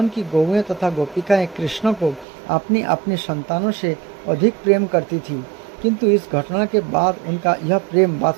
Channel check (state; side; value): drops out; left; at 2.2 s